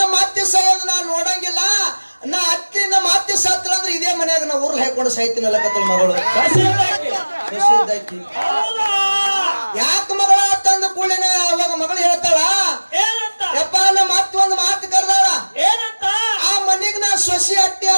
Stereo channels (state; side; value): inverted; both; correlation -1.00